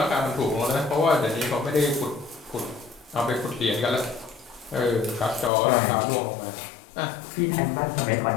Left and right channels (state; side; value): drops out; right; at 5.5 s